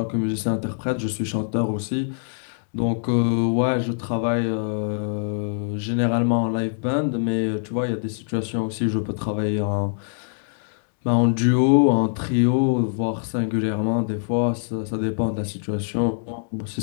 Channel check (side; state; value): right; silent; digital silence